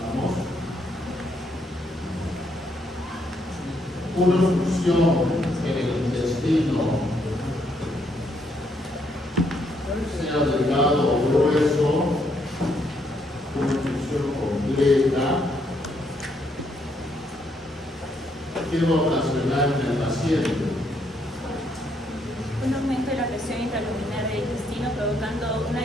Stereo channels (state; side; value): normal; both; correlation 0.74